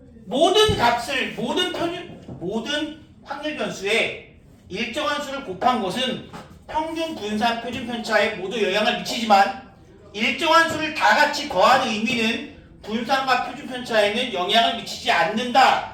모든 값을 모든 확률 변수에 일정한 수를 곱한 것은 평균 분산 표준 편차에 모두 영향을 미치지만 일정한 수를 다 같이 더하는 의미는 분산과 표준 편차에는 영향을 미치지 않는다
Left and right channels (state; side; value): identical; both; correlation 1.00